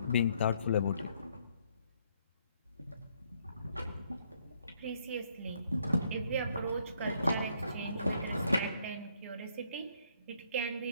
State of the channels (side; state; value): both; inverted; correlation -0.69